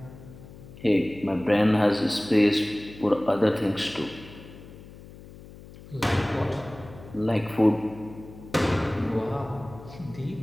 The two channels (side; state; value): left; noise; hum, 18 dB below the sound